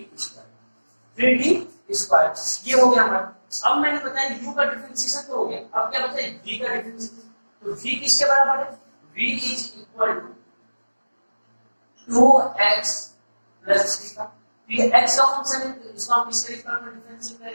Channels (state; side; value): inverted; both; correlation -1.00